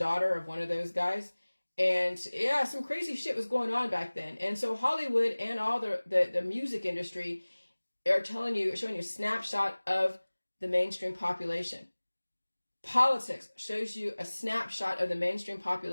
of one of those guys. And yeah, some crazy shit was going on back then. And so Hollywood and all the music industry are showing you a snapshot of the mainstream population. Politics shows you a snapshot of the mainstream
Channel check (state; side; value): inverted; both; correlation -1.00